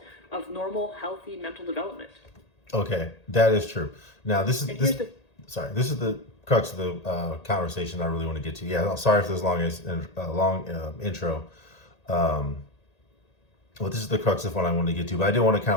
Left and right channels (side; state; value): right; late; 1.8 ms